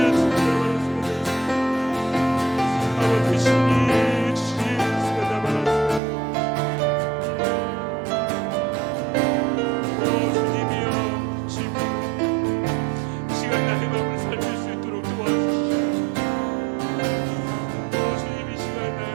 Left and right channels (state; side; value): drops out; left; at 6.0 s